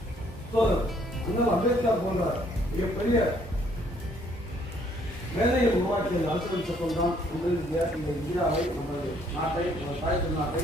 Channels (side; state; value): both; normal; correlation 0.65